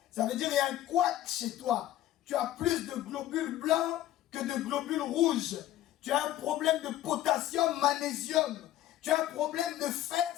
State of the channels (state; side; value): quieter; right; 13.5 dB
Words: Ça veut dire qu'il y a un couac chez toi. Tu as plus de globules blancs que de globules rouges. Tu as un problème de potassium, magnésium. Tu as un problème de fer,